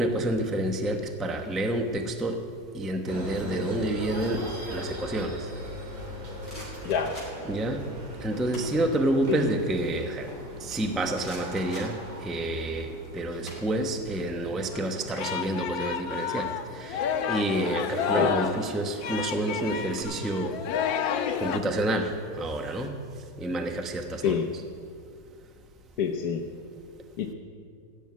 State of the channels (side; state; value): both; normal; correlation 0.39